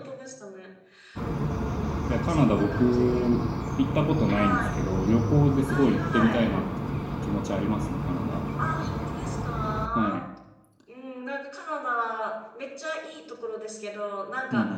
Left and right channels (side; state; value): both; identical; correlation 1.00